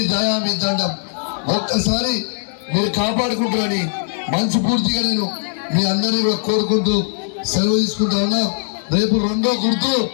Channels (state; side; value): silent; right; digital silence